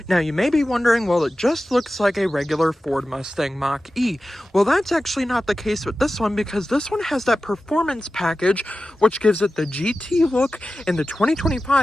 Now you may be wondering, well, it just looks like a regular Ford Mustang Mach-E. Well, that's actually not the case with this one, because this one has that Performance Package, which gives it the GT look, and the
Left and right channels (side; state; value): both; normal; correlation 0.94